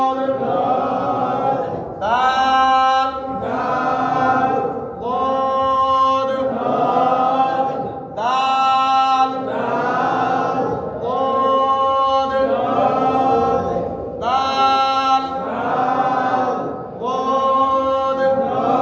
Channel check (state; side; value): identical; both; correlation 1.00